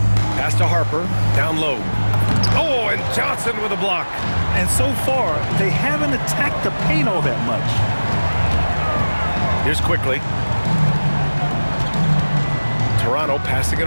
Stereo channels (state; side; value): inverted; both; correlation -1.00